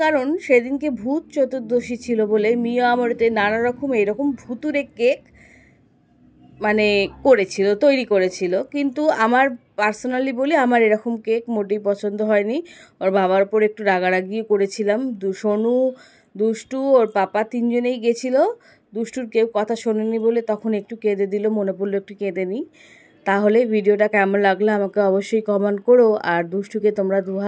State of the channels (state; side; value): identical; both; correlation 1.00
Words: কারণ সেদিনকে ভূত চতুর্দশী ছিল বলে মিয়া আমারতে নানা রকম এরকম ভুতুরে কেক মানে তৈরি করেছিল, কিন্তু আমার পার্সোনালি বলি আমার এরকম কেক মোটেই পছন্দ হয়নি। ওর বাবার ওপর একটু রাগারাগিও করেছিলাম। সোনু, দুষ্টু, ওর পাপা তিনজনেই গেছিলো। দুষ্টুর কেউ কথা শোনেনি বলে তখন একটু কেঁদে দিল, মনে পড়লো একটু কেঁদে নিই। তাহলে ভিডিওটা কেমন লাগলো আমাকে অবশ্যই কমেন্ট করো। আর দুষ্টুকে তোমরা